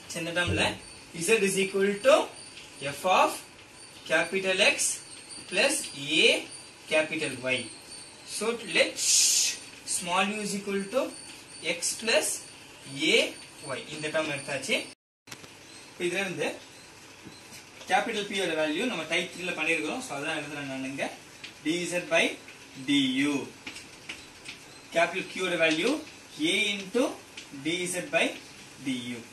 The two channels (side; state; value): both; identical; correlation 1.00